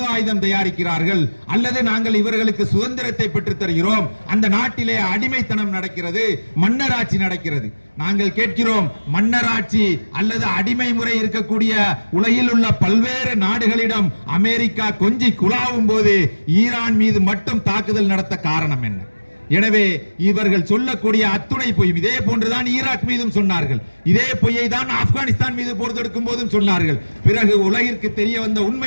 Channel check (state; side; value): inverted; both; correlation -1.00